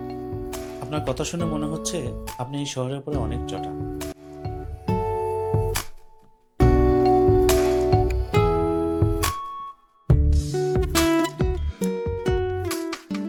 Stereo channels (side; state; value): both; identical; correlation 1.00